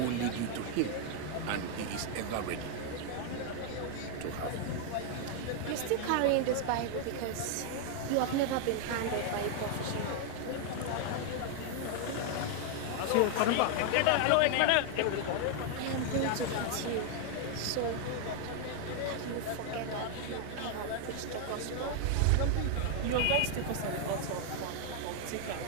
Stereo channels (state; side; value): different; both; correlation 0.00